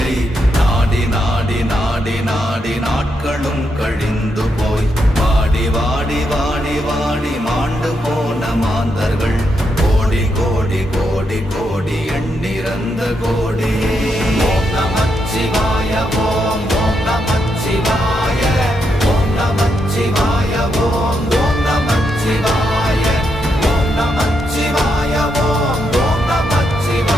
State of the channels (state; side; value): normal; both; correlation 0.81